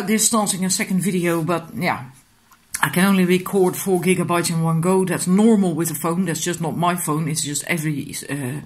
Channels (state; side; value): identical; both; correlation 1.00